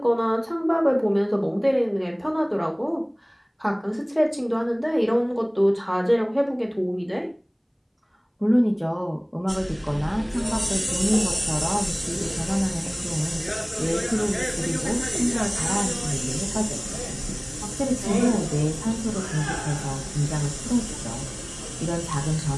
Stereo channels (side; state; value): both; identical; correlation 1.00